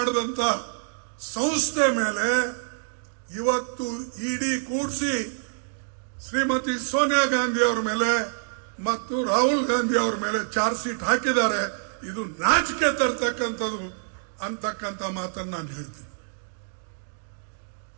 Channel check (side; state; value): left; silent; digital silence